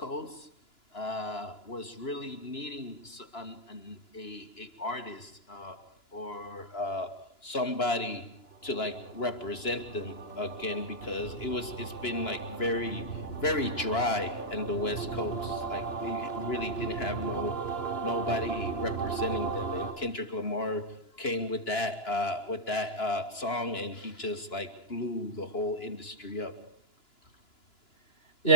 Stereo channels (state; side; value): late; right; 2.9 ms